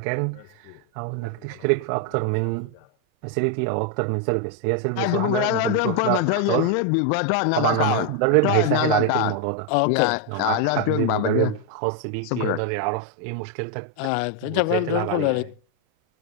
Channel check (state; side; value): different; both; correlation 0.01